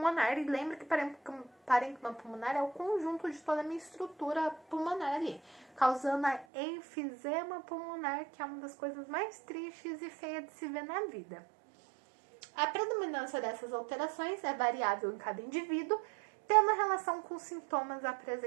E lembra que parênquima pulmonar é o conjunto de toda a minha estrutura pulmonar ali. Causando a enfisema pulmonar, que é uma das coisas mais tristes e feias de se ver na vida. A predominância dessas alterações é variável em cada indivíduo, tendo relação com os sintomas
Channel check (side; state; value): left; drops out; at 6.5 s